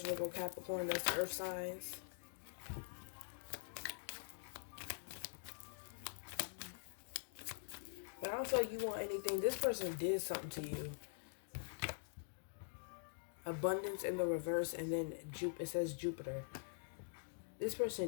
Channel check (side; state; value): right; silent; digital silence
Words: Virgo, Capricorn, that's the earth signs. But I don't feel like you want anything. This person did something to you. Abundance in the reverse, and then it says Jupiter. This